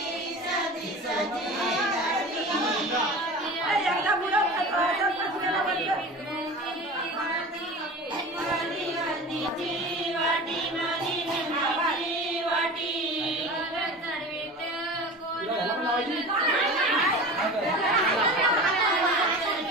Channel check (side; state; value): both; normal; correlation 0.34